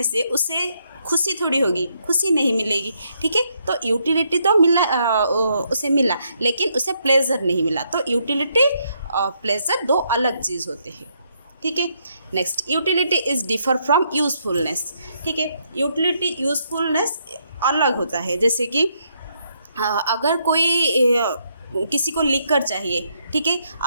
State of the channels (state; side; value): inverted; both; correlation -0.75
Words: से उसे खुशी थोड़ी होगी, खुशी नहीं मिलेगी. ठीक है, तो यूटिलिटी तो उसे मिला, लेकिन उसे प्लेजर नहीं मिला. तो यूटिलिटी प्लेजर दो अलग चीज़ होते हैं. ठीक है, next, utility is differ from usefulness. ठीक है, यूटिलिटी यूजफुलनेस अलग होता है. जैसे कि अगर कोई किसी को लिकर चाहिए, ठीक है,